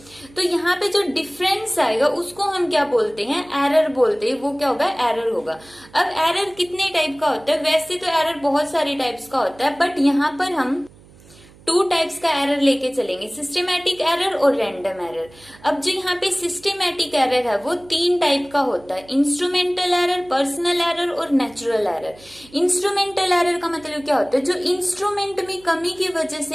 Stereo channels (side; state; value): right; noise; hum, 25 dB below the sound